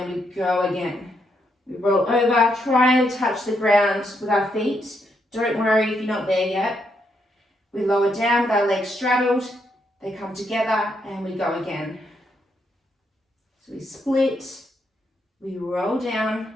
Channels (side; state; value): both; normal; correlation 0.78